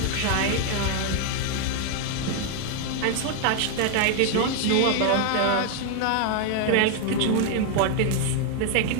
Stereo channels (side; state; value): both; different; correlation 0.00